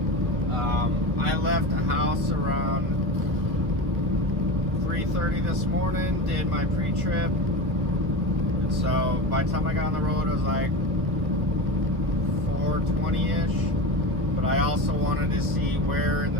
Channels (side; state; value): left; late; 1.2 ms